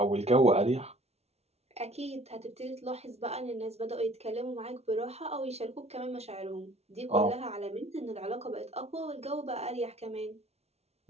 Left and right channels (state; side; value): late; left; 0.31 ms